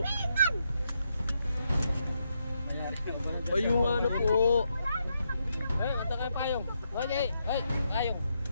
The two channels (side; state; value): both; inverted; correlation -0.80